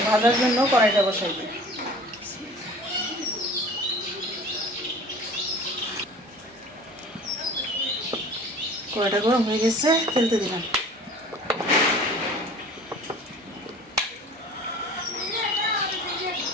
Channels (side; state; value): both; normal; correlation 0.44